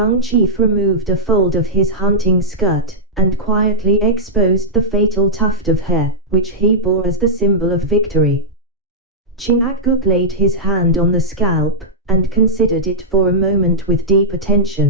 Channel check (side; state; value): both; normal; correlation -0.10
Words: chief removed a fold of his hunting skirt, and quietly exposed the fatal tuft of hair, which he bore as the symbol of victory. Chingachgook laid his hand on the scalp, and considered it for a moment with deep